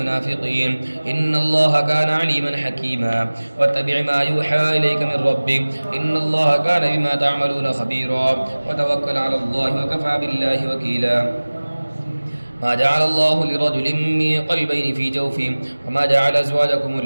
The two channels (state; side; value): inverted; both; correlation -1.00